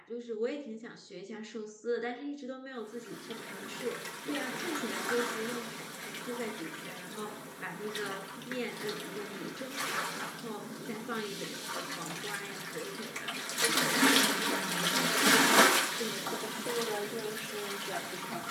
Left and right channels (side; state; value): both; identical; correlation 1.00